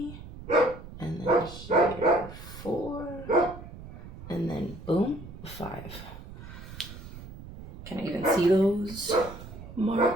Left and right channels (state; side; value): noise; right; rumble, 14 dB below the sound